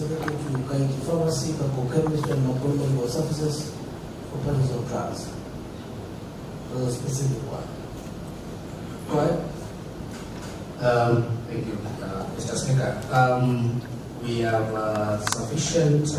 to Kaiti Pharmacy, Chemist, and Makueni Medical Services for purchase of drugs? A specific one. Go ahead. Thank you, Mr. Speaker. We have sufficient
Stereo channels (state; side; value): identical; both; correlation 1.00